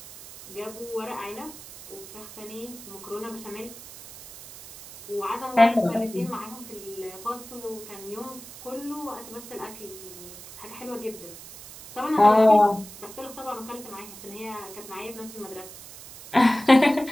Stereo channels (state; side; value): noise; right; hiss, 15 dB below the sound